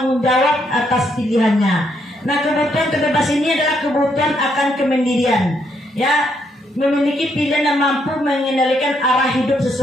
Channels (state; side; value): normal; both; correlation 0.75